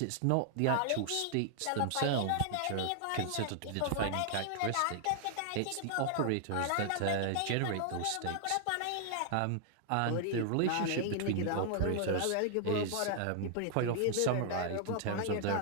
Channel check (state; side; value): different; both; correlation -0.01